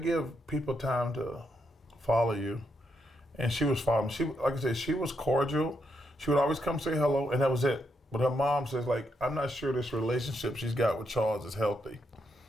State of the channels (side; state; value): both; normal; correlation 0.80